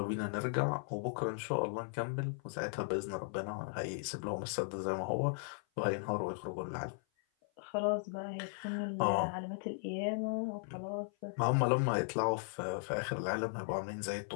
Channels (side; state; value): right; silent; 53 dB below the other